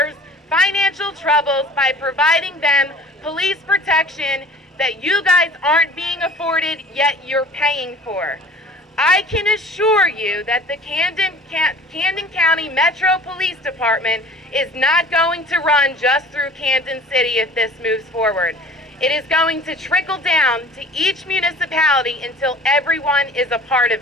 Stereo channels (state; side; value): normal; both; correlation 0.46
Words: financial troubles by providing them police protection that you guys aren't being afforded, yet you're paying for. I can assure you that the Camden County Metro Police Department is not going to run just through Camden City if this moves forward. It is going to trickle down to each municipality until everyone is a part of